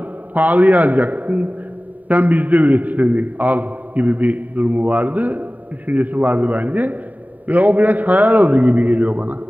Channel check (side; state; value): left; late; 0.078 ms